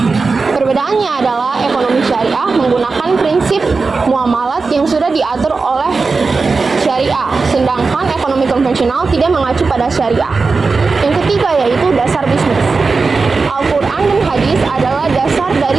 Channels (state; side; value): quieter; left; 4.3 dB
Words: Perbedaannya adalah ekonomi syariah menggunakan prinsip muamalat yang sudah diatur oleh syariah, sedangkan ekonomi konvensional tidak mengacu pada syariah. Yang ketiga yaitu dasar bisnis. Al-Quran dan hadis adalah dasar